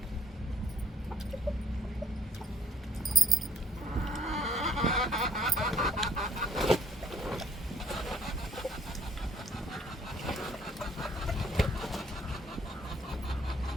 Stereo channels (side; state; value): both; normal; correlation 0.64